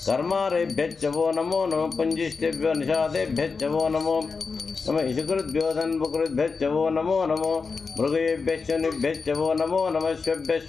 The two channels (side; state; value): right; quieter; 4.8 dB